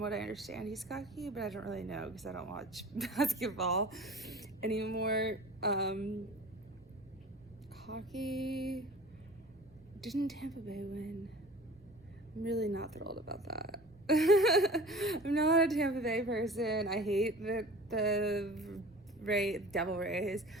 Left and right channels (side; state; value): right; noise; rumble, 27 dB below the sound